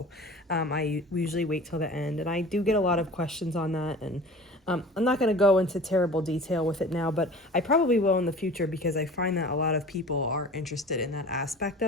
I usually wait till the end, and I do get a lot of questions on that, and I'm not going to go into terrible detail with it now, but I probably will in the future because I find that a lot of people are interested in that aspect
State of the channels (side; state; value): both; normal; correlation 0.41